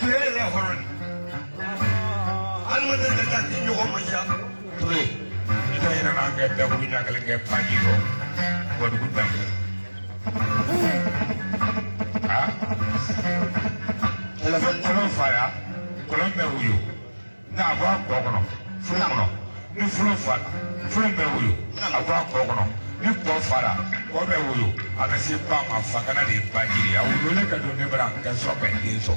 ya horon alma da da ni yo manja tuwe ita ina na ngeta buina kala ngepa jiro bodu gudam ah kolon fara kolon bɛ wuyo n'a bɔ a kɔ kɔnɔ fula kɔnɔ ni fula fara fula bɛ wuyo a bɔ a kɔ kɔnɔ ni kɔ fara kɔ bɛ wuyo a bɛ se ba ma fakana de ba jiri a wuyo ne ka don ne bara ka sɔrɔ ka den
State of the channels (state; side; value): inverted; both; correlation -1.00